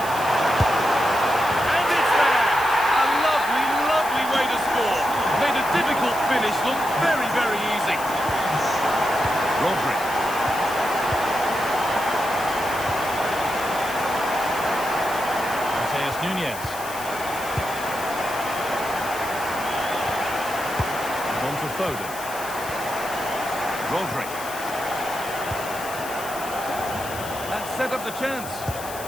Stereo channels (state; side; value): noise; left; hiss, 12 dB below the sound